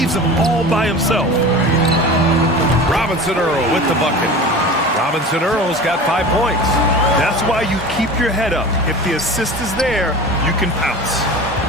him all by himself. Robinson Earl with the bucket. Robinson Earl's got 5 points. That's why you keep your head up. If the assist is there, you can pounce.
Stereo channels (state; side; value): normal; both; correlation 0.35